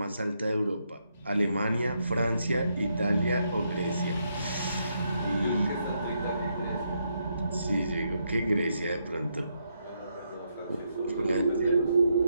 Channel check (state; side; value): inverted; both; correlation -0.79